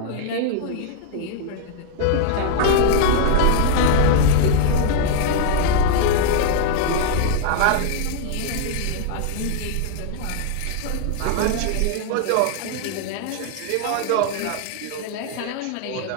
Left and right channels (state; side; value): different; both; correlation 0.00